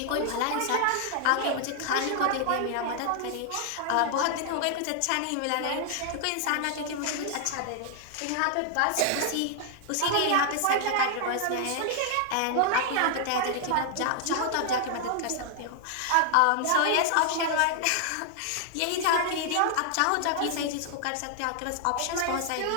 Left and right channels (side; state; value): both; different; correlation 0.00